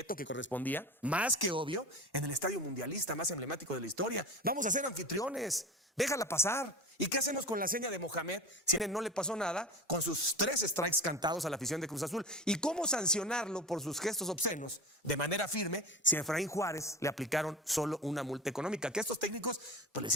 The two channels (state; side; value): normal; both; correlation 0.31